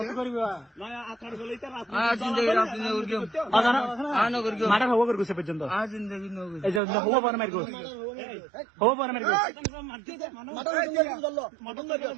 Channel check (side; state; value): left; drops out; at 6.8 s